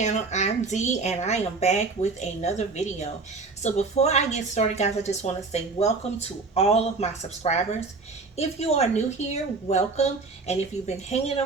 I'm Dee and I am back with another video. So before I get started guys, I just want to say welcome to all of my subscribers. If you are new here, welcome. And if you've been hanging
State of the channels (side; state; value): left; quieter; 4.0 dB